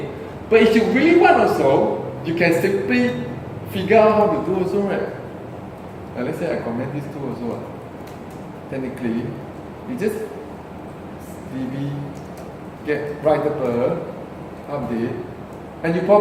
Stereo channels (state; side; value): identical; both; correlation 1.00